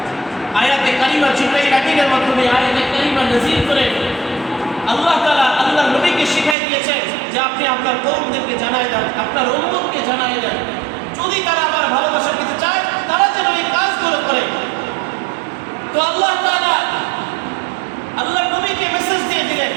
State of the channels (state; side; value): drops out; left; at 6.6 s